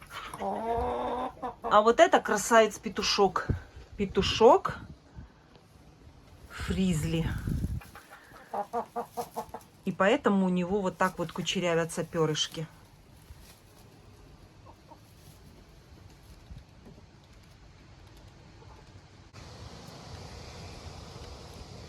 А вот это красавец-петушок. Петушок фризли. И поэтому у него вот так вот кучерявятся перышки.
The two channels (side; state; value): both; identical; correlation 1.00